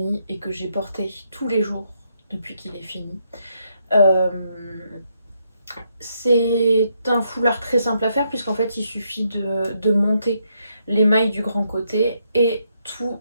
et que j'ai porté tous les jours depuis qu'il est fini. Euh, c'est un foulard très simple à faire puisqu'en fait il suffit de monter les mailles du grand côté et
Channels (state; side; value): inverted; both; correlation -0.77